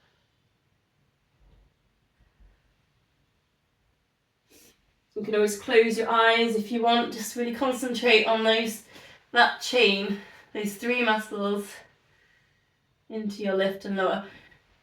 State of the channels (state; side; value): identical; both; correlation 1.00